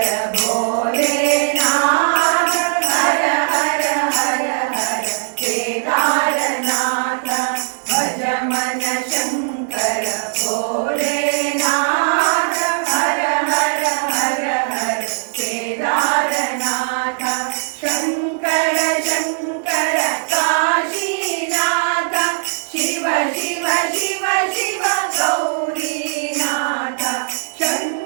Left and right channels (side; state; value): left; silent; digital silence